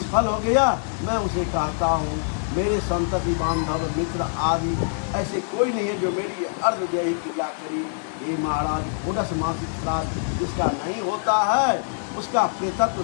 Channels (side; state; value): right; silent; digital silence